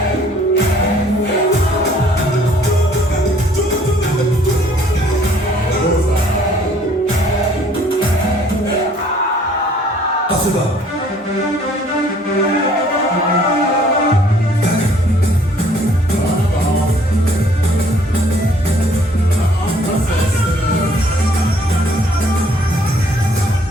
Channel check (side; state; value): both; normal; correlation 0.59